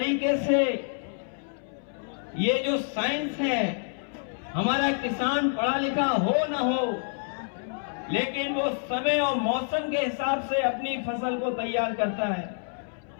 से ये जो साइंस है, हमारा किसान पढ़ा लिखा हो ना हो, लेकिन वो समय और मौसम के हिसाब से अपनी फसल को तैयार करता है।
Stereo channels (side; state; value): right; silent; 59 dB below the other